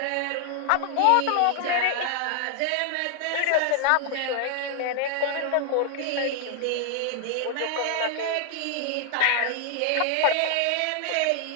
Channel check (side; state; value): both; different; correlation 0.00